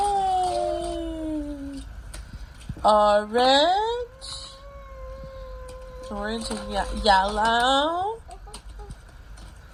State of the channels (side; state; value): both; identical; correlation 1.00